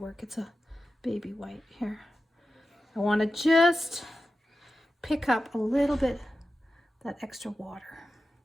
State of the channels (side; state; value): both; normal; correlation 0.92